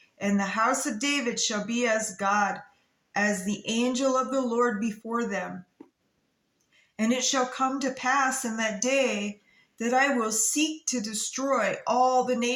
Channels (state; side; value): identical; both; correlation 1.00